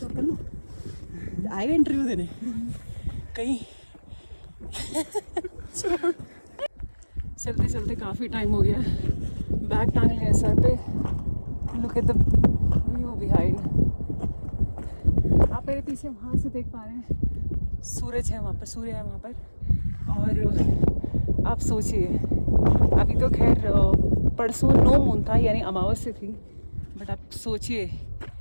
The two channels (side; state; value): both; inverted; correlation -1.00